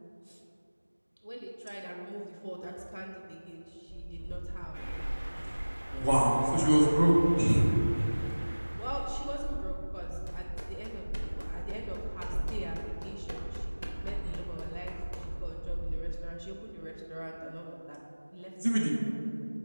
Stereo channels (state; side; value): inverted; both; correlation -1.00